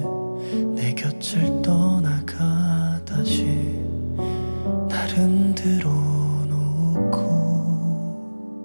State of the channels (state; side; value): inverted; both; correlation -1.00